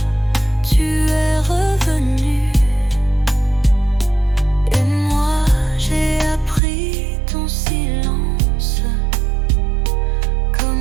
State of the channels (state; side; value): drops out; left; at 6.6 s